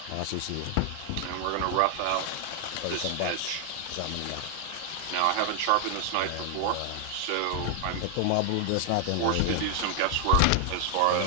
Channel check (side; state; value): both; different; correlation 0.00